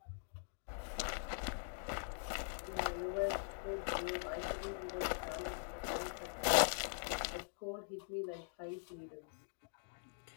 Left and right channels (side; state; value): right; silent; digital silence